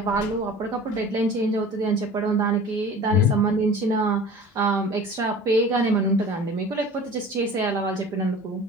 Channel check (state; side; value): normal; both; correlation 0.41